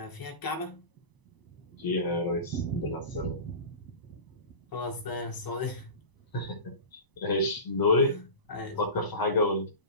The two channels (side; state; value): right; late; 1.0 ms